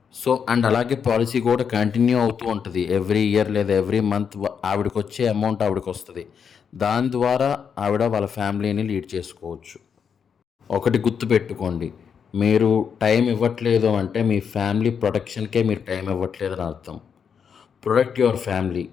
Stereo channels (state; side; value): quieter; right; 7.0 dB